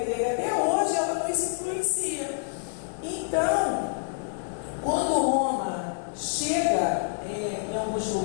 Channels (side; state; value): right; silent; 59 dB below the other